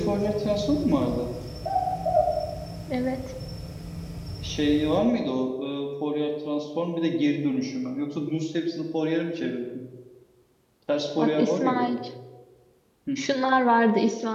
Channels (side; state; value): both; identical; correlation 1.00